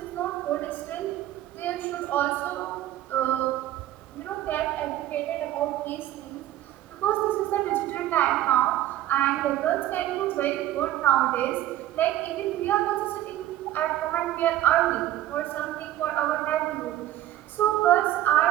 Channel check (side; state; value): left; quieter; 13.7 dB